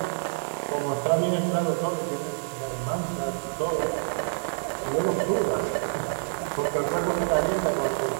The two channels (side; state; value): left; silent; digital silence